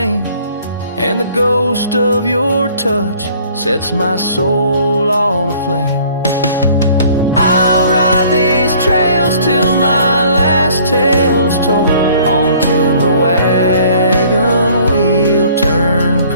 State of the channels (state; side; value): inverted; both; correlation -0.56